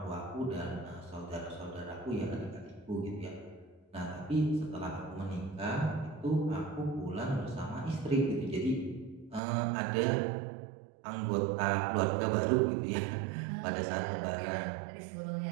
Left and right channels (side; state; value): left; drops out; at 9.4 s